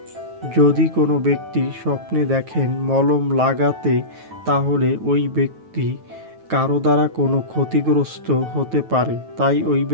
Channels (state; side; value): late; left; 9.3 ms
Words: যদি কোনো ব্যক্তি স্বপ্নে দেখেন মলম লাগাতে, তাহলে ওই ব্যক্তি কারো দ্বারা কোনো ক্ষতিগ্রস্ত হতে পারে, তাই ওই